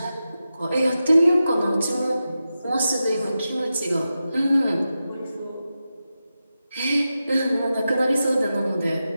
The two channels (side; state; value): both; inverted; correlation -0.91